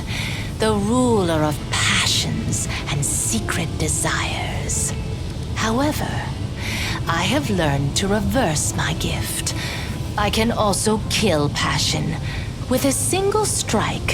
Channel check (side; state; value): both; identical; correlation 1.00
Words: the ruler of passions and secret desires. However, I have learned to reverse my gift. I can also kill passion. With a single